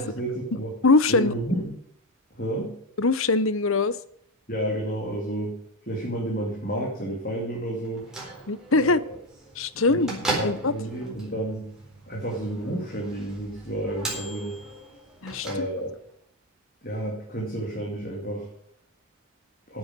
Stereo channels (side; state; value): both; normal; correlation 0.13